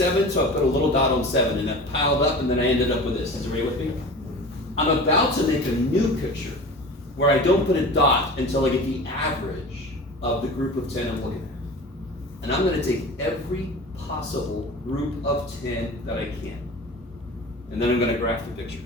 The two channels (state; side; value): normal; both; correlation 0.36